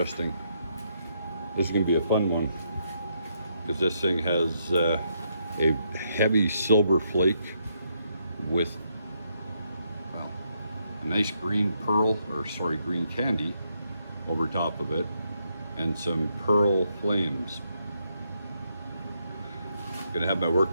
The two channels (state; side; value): inverted; both; correlation -0.77